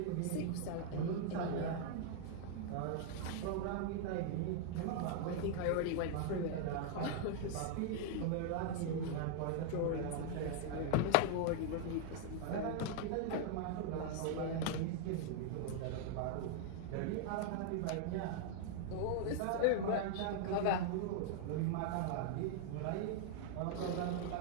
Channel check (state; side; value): different; both; correlation -0.01